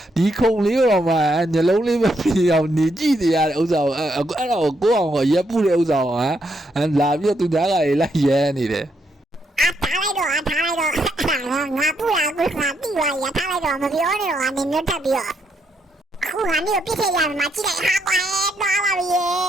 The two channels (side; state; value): both; normal; correlation 0.77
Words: ဒီခုံလေးတော့မှညလုံးလေးပဲပြအောင်နေကြည့်နေရတဲ့ဥစ္စာကိုအဲ့ဒါကိုကိုယ့်အောင်ကိုရက်ပုတဲ့ဥစ္စာကိုလာပြီးတော့သူသားကလေးလိုက်ရဲနေတယ်ထားလိုက်တော့ငါပူတာကိုငါတိသွားရထားလိုက်တော့မပြောနဲ့တော့နင်မျိုးတက်ပြီးတော့ခုငါမျိုးပြစ်ခဲ့ရမှာကြည့်လိုက်ဟာကွာတော့ပါပြီ